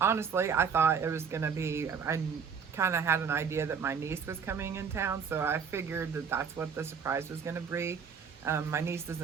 I thought it was going to be, I kind of had an idea that my niece was coming in town, so I figured that that's what the surprise was going to be. My niece is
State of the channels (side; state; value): left; quieter; 6.4 dB